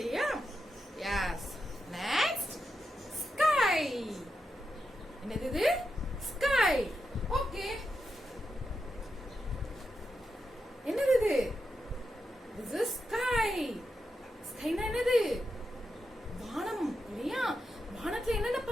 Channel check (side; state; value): both; normal; correlation 0.87